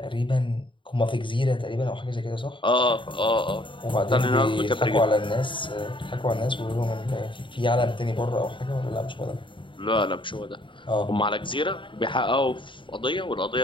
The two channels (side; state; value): right; late; 0.24 ms